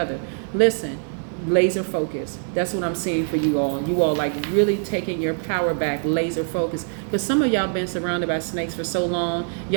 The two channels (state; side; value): silent; left; 63 dB below the other